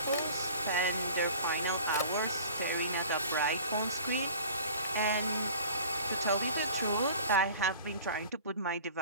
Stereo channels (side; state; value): both; inverted; correlation -0.44